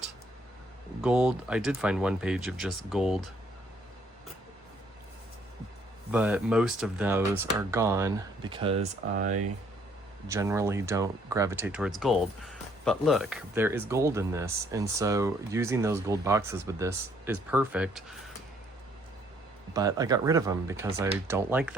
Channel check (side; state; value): both; normal; correlation 0.65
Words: gold. I did find one page of just gold, but most of those are gone because I generally don't gravitate towards gold. But look, there is gold in this, and so using those gold boxes with this is perfect. But I got rid of them because I don't like